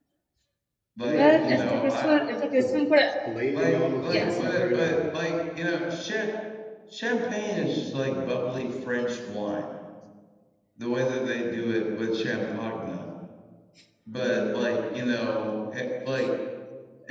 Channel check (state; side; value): identical; both; correlation 1.00